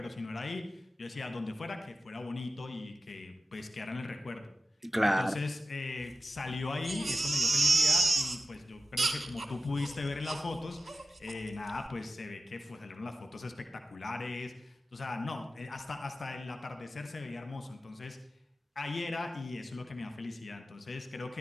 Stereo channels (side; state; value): both; normal; correlation 0.91